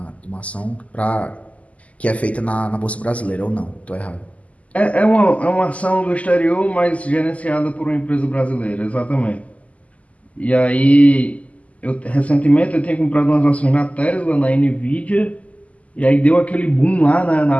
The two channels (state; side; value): late; right; 0.069 ms